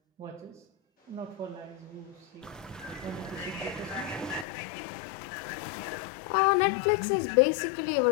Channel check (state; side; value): drops out; right; at 4.5 s